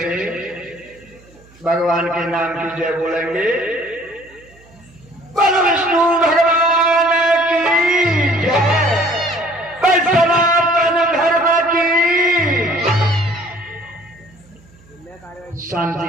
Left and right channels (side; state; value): right; noise; hum, 27 dB below the sound